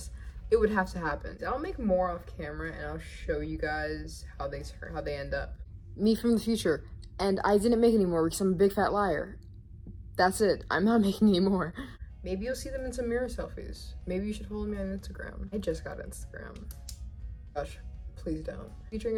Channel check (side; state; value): both; identical; correlation 1.00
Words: it would have to happen. I'll make more off camera and I'll show you guys how they end up. Me from the future. And I didn't make any more because I'm a big fat liar. That's it. I'm not making any more. Maybe you'll see them in some mirror selfies. Maybe you should follow me on Instagram. I just got Instagram. Gosh, please don't. Featuring